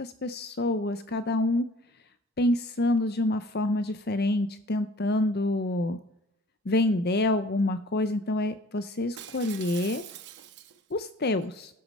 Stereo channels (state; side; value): normal; both; correlation 0.51